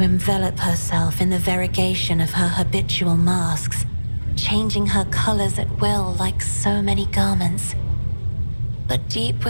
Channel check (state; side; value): inverted; both; correlation -1.00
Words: envelop herself in the variegation of her habitual masks, changing her colors at will like so many garments. But deep